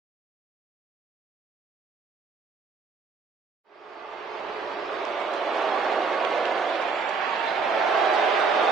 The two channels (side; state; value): left; quieter; 4.9 dB